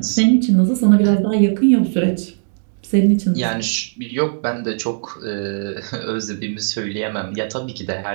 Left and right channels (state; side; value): silent; left; digital silence